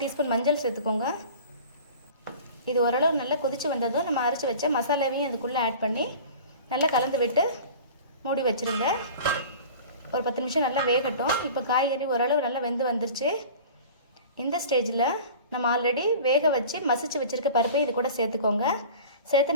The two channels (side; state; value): both; inverted; correlation -0.40